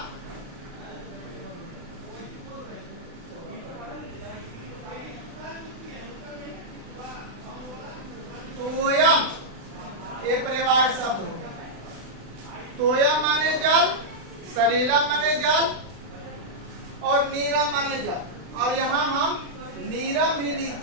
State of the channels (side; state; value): left; late; 36 ms